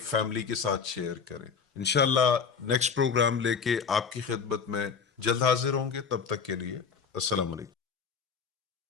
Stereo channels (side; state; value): right; quieter; 6.1 dB